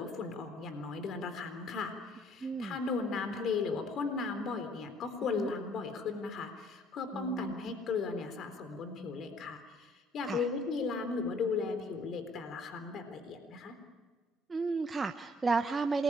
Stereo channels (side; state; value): both; normal; correlation 0.60